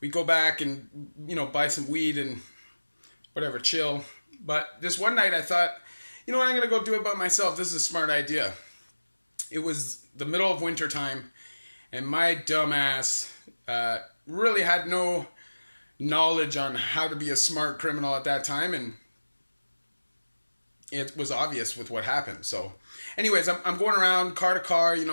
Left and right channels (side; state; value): both; inverted; correlation -1.00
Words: go back and, buy some weed and whatever, chill. But this one night I thought, I'm going to go do it by myself. This is a smart idea. It was the middle of winter time, and my dumb ass really had no knowledge on how to be a smart criminal at that time, and it was obvious with what happened. So anyways, I'm going around car to car,